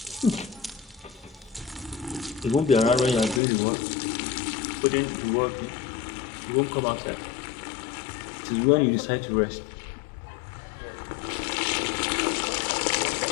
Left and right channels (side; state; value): right; drops out; at 3.4 s